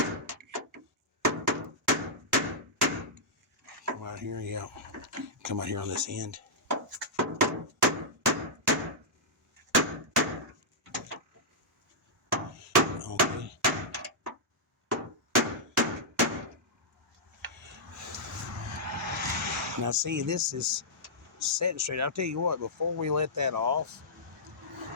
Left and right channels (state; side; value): normal; both; correlation -0.11